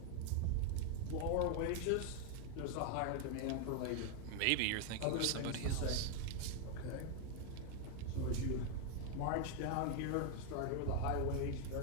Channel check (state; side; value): different; both; correlation 0.01